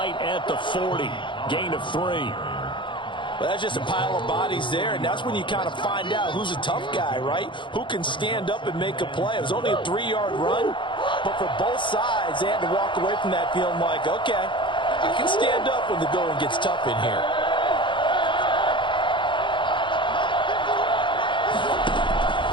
at the 40. Gain of 3. Well, that's just a pile of bodies there, and that's when you kind of find out who's a tough guy, right? Who can stand up and make a play. It was only a 3-yard run, but for both sides, they had to walk away from that feeling like, okay, I can stand up when the going gets tough in here.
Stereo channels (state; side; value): late; right; 0.23 ms